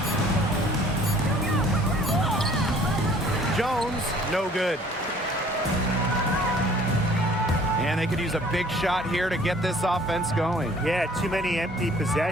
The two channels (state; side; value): normal; both; correlation 0.54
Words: Jones, no good. And they could use a big shot here to get this offense going. Yeah, too many empty